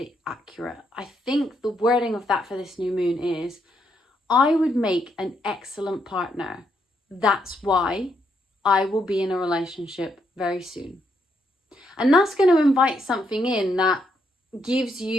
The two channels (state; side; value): normal; both; correlation 0.77